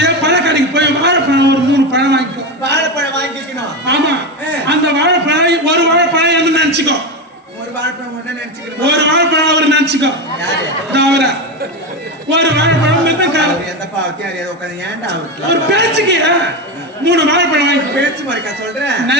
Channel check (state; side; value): normal; both; correlation 0.16